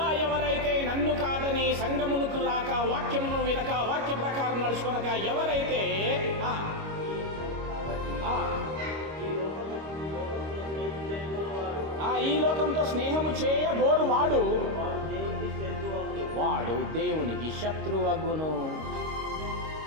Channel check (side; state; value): left; late; 25 ms